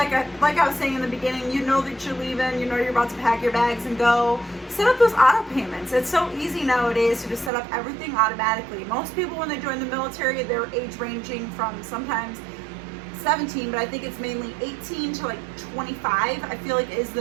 I was saying in the beginning, you know that you're leaving, you're about to pack your bags and go. Set up those auto payments. It's so easy nowadays to just set up everything automatically. Most people, when they join the military, they're age ranging from sometimes 17, but I think it's mainly 18 to 25. I feel is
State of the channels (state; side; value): drops out; left; at 7.5 s